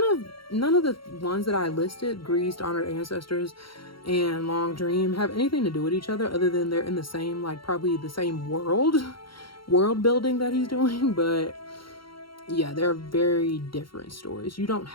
of the ones that I listed, Greased, Honored Ancestors, and Long Dream, have anything to do with each other other than they're in the same, like, probably the same world building that he's doing. But yeah, they're very different stories. You don't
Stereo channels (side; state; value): right; late; 0.73 ms